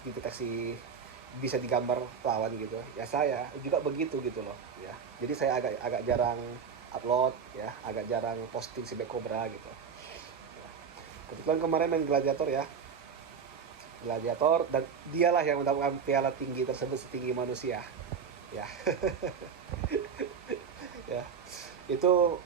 dideteksi, bisa digambar lawan gitu ya. Saya juga begitu gitu loh ya. Jadi saya agak agak jarang upload ya, agak jarang posting si Black Cobra gitu ya. Kebetulan kemarin main gladiator ya, gladiator, dan dialah yang mendapatkan piala tinggi tersebut, setinggi manusia ya. Ya itu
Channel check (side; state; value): left; quieter; 6.5 dB